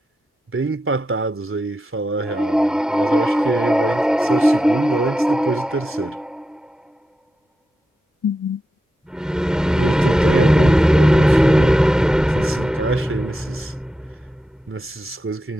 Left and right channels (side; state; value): both; normal; correlation 0.89